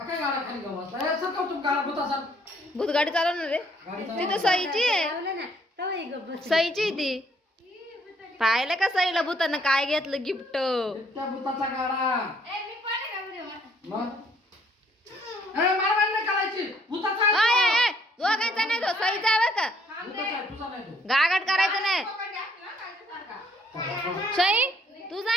गाडा खाली गवसला ए सरकव तुम गाडा भूताचा भूत गाडी चालवणार रे ती तर सईची आहे सईची ती पाहिलं का सईला भूतानं काय घेतलं गिफ्ट त्या भूताचा गाडा मग मारवाड नाही करायची भूताचा दोघांचा नाही तो सईचा बरं का भूताचा तुझा नाही तो गागाट करायचं नाही सई तुझा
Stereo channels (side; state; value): both; normal; correlation 0.65